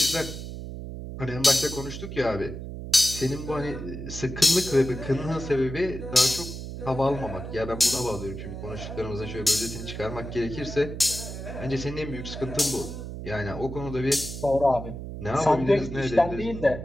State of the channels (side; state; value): right; noise; hum, 8 dB below the sound